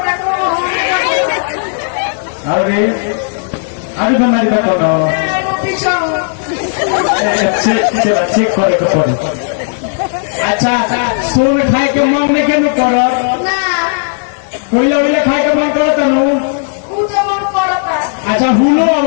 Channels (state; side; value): silent; right; digital silence